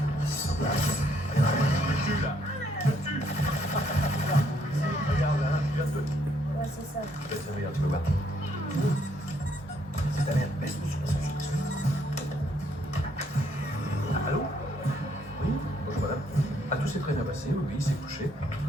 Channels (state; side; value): normal; both; correlation 0.70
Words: Tu là. Tu. Regarde là, tu viens de... Ouais, c'est ça. Regarde, tu peux voir. C'est ta mère. Baisse ton son. Allô? Oui? Bonjour madame. Ah, tout s'est très bien passé, oui, il s'est couché.